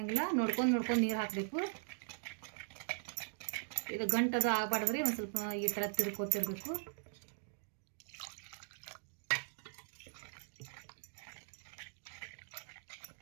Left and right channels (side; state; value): left; silent; digital silence